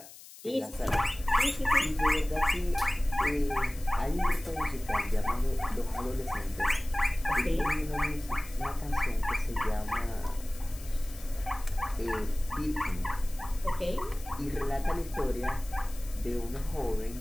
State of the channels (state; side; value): noise; left; hiss, 18 dB below the sound